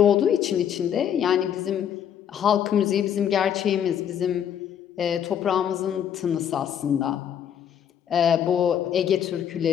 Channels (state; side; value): quieter; right; 9.1 dB